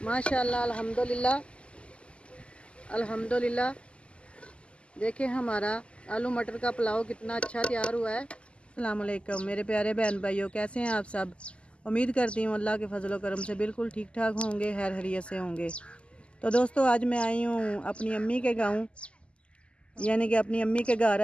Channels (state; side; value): late; right; 0.054 ms